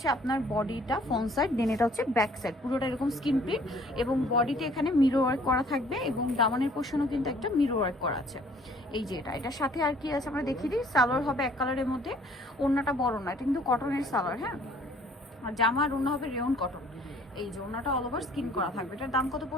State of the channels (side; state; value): both; normal; correlation 0.57